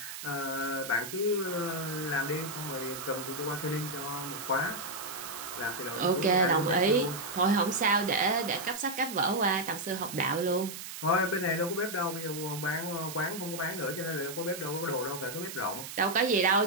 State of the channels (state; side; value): noise; right; hiss, 9 dB below the sound